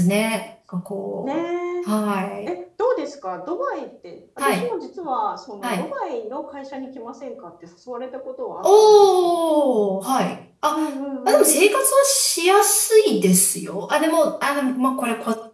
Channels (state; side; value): identical; both; correlation 1.00